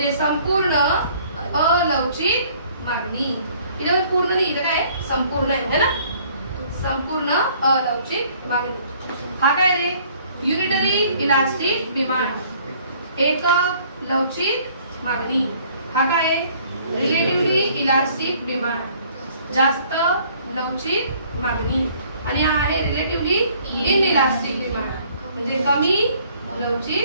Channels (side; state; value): both; inverted; correlation -0.59